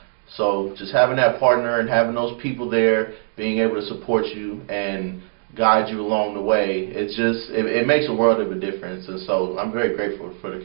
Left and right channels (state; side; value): silent; left; digital silence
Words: So just having that partner and having those people there, being able to support you and guide you along the way, it makes a world of a difference. And so I'm very grateful for the